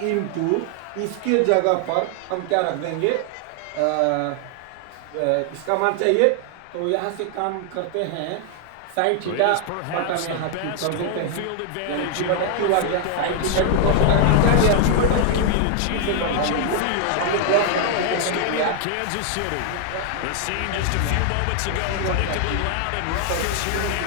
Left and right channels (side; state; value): both; different; correlation 0.00